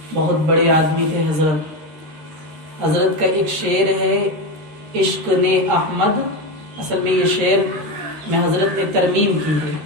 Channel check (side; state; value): left; late; 13 ms